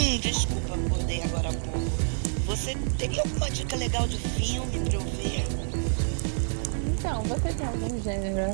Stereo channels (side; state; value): left; silent; digital silence